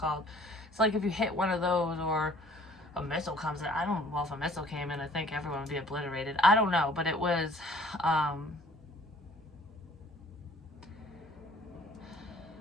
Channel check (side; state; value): both; normal; correlation 0.55